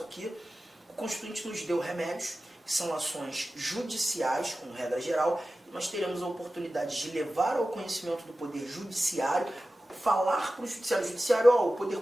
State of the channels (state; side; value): normal; both; correlation 0.95